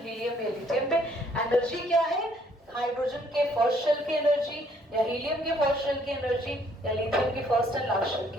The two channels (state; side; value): normal; both; correlation 0.65